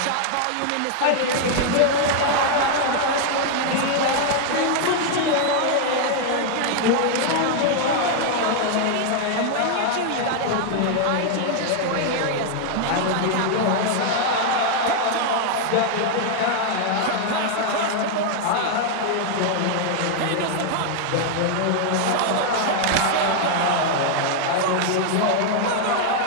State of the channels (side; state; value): both; different; correlation 0.00